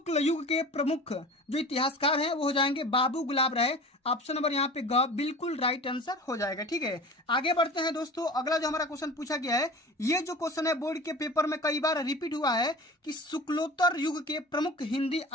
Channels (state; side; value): normal; both; correlation 0.37